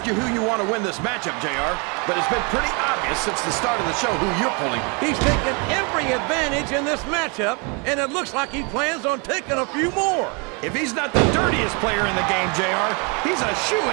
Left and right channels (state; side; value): quieter; left; 33.0 dB